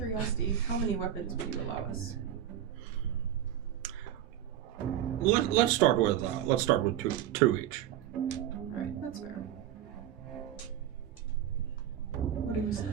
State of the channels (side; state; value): left; quieter; 10.7 dB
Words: how many weapons would you allow us? Let's start with two each. Alright, that's fair. What are you